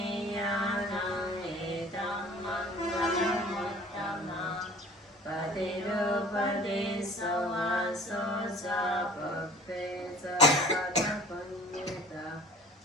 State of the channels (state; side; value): normal; both; correlation 0.46